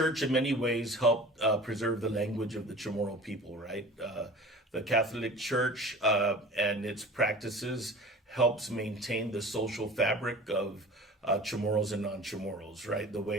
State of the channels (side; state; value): both; normal; correlation 0.40